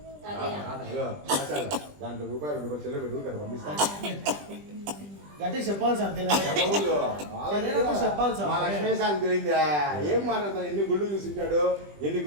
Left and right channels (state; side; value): late; left; 20 ms